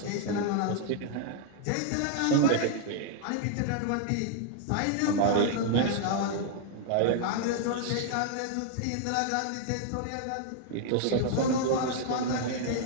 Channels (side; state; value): both; different; correlation 0.00